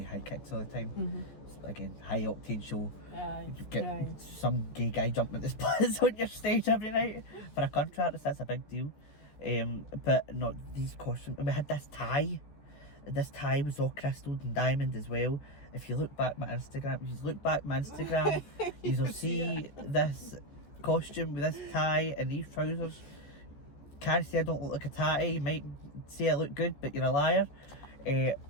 high kicks all the time. So again, high octane show. You get some gay guy jumping at the splits on your stage every night for a contract. That's a big deal. But not these costumes. And we had this tie. This tie was all crystalled and diamond as well. If you look back my Instagram, you'll see this costume with this tie and these trousers. Can't say I don't look like a tatty. You might say I look good, but you're a liar.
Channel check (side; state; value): right; late; 14 ms